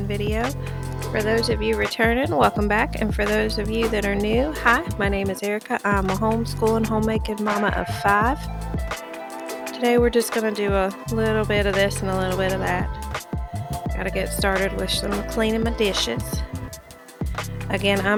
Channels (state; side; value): identical; both; correlation 1.00